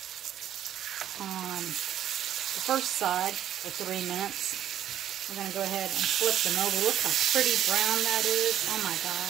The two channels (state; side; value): quieter; left; 10.9 dB